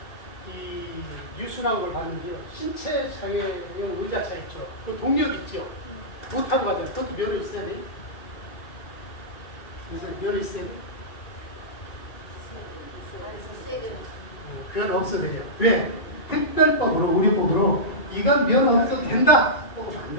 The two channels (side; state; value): right; late; 2.3 ms